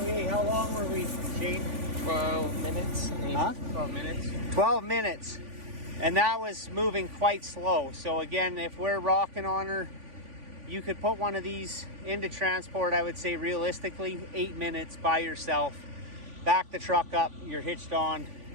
how long were we, Shane? 12 minutes. Huh? 12 minutes. 12 minutes. And that was moving quite slow. So again, if we're rocking on her, you could put one of these into transport, I would say realistically, 8 minutes by yourself. Back the truck up, you're hitched on,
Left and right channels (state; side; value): late; left; 3.5 ms